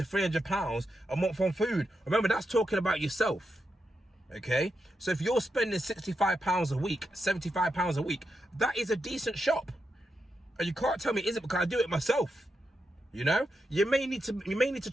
£300 a month on food. Remember, that's talking about yourself. Okay, so if you're spending £65 a week, £75 a week, that is a decent shop. And you can't tell me it isn't, because I do it myself. You know, you may need to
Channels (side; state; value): both; normal; correlation 0.85